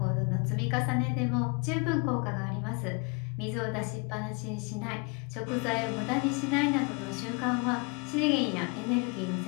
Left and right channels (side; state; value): right; quieter; 30.4 dB